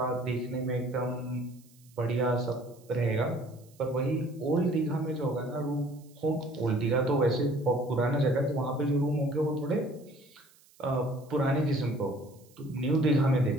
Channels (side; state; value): right; noise; hiss, 29 dB below the sound